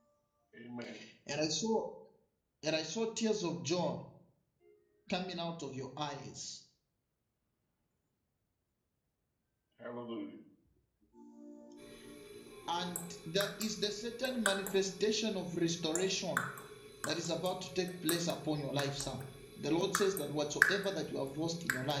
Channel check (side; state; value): both; identical; correlation 1.00